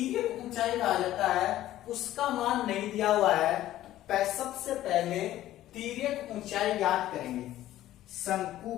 ऊंचाई कहा जाता है, उसका मान नहीं दिया हुआ है। सबसे पहले तिर्यक ऊंचाई ज्ञात करेंगे। शंकु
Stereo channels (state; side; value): quieter; right; 14.0 dB